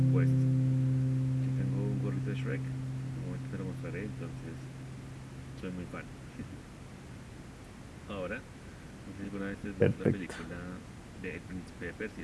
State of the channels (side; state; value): both; identical; correlation 1.00